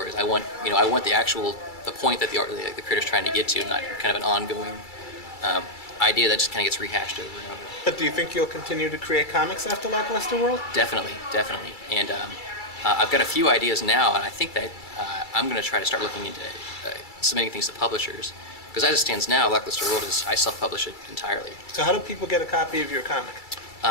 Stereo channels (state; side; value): late; right; 2.3 ms